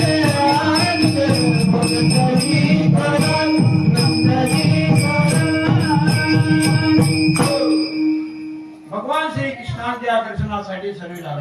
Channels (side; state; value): both; identical; correlation 1.00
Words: भगवान श्री कृष्णाच्या दर्शनासाठी सर्व